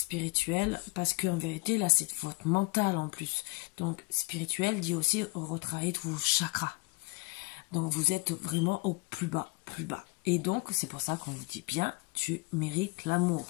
parce qu'en vérité, là, c'est votre mental en plus. Donc, spirituel dit aussi retravailler tous vos chakras. Donc, vous êtes vraiment au plus bas, plus bas. Et donc, c'est pour ça qu'on vous dit bien, tu mérites l'amour.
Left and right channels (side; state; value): right; quieter; 27.1 dB